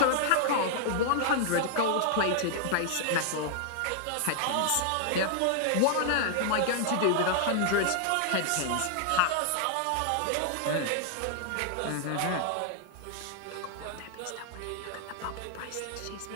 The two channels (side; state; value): both; different; correlation 0.00